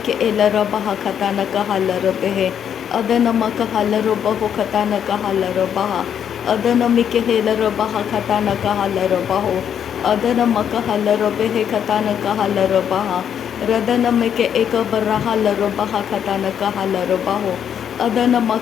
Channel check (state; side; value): quieter; right; 8.7 dB